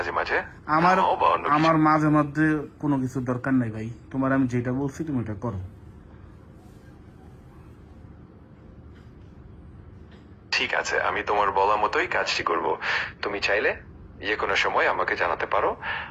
মাঝে আমার থামাও বা অন্য কিছু। আমার মাঝে মধ্যে কোনো কিছুর দরকার নাই ভাই, তোমার আমি যেটা বলছি তুমি এটা করো। ঠিক আছে, আমি তোমার বলা মতোই কাজটি করব। তুমি চাইলে যে কোনো সময় আমাকে জানাতে পারো,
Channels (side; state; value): both; identical; correlation 1.00